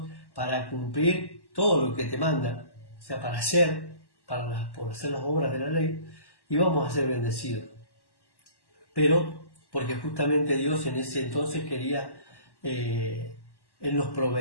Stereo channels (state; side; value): late; right; 1.1 ms